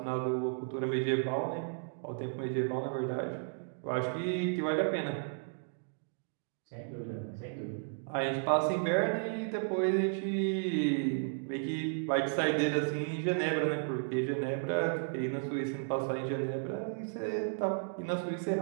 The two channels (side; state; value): left; silent; digital silence